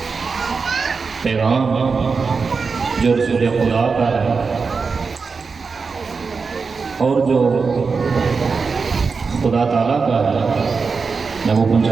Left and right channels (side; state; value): left; quieter; 4.9 dB